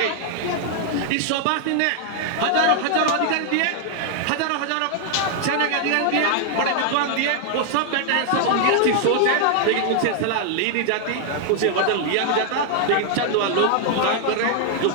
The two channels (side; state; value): both; different; correlation 0.00